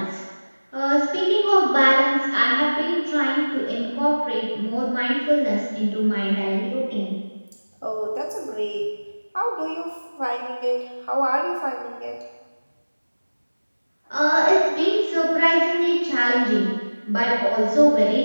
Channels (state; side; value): inverted; both; correlation -1.00